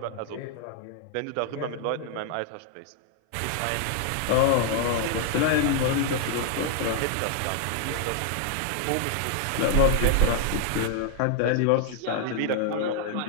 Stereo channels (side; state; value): both; different; correlation 0.00